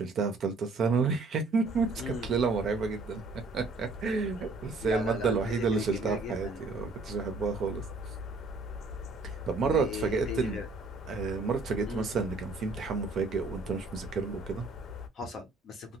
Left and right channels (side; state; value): left; quieter; 3.5 dB